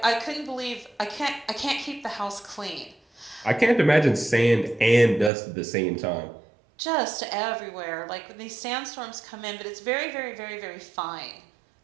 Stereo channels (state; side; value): drops out; left; at 5.3 s